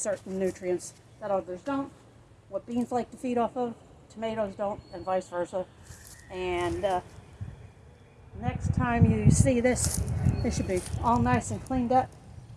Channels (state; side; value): identical; both; correlation 1.00